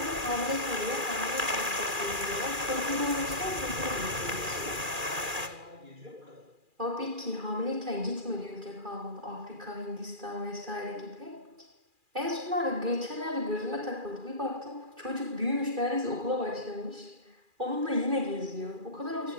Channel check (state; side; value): late; left; 2.4 ms